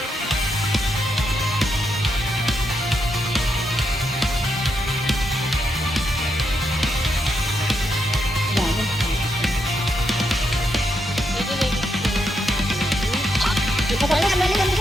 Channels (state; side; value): normal; both; correlation 0.81